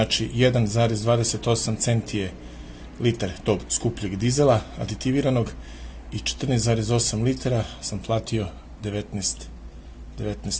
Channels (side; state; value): both; identical; correlation 1.00